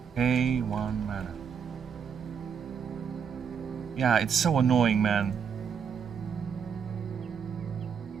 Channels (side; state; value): left; quieter; 7.0 dB